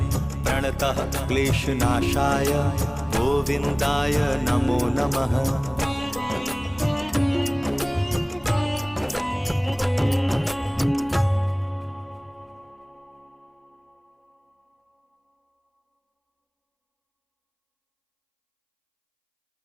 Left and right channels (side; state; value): both; identical; correlation 1.00